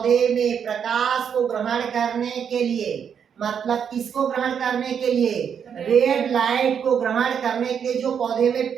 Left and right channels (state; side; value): quieter; left; 7.6 dB